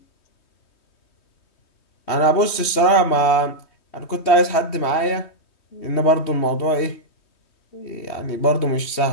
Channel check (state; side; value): late; right; 3.2 ms